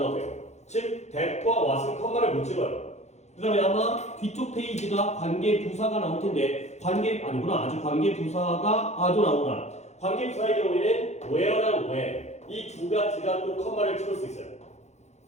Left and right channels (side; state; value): right; late; 0.33 ms